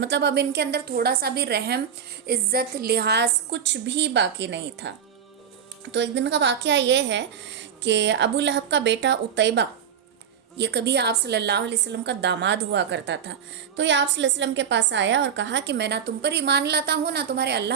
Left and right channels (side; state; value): left; quieter; 8.0 dB